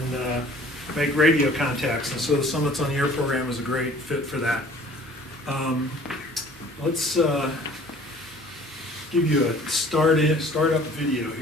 make radio contacts, and so the Summits on the Air program is a great fit for that. Let's give you a start up video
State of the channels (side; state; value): both; normal; correlation 0.51